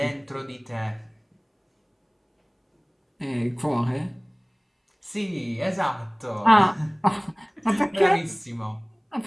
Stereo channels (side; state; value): both; identical; correlation 1.00